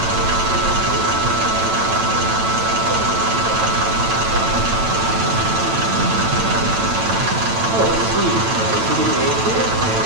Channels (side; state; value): left; late; 9.0 ms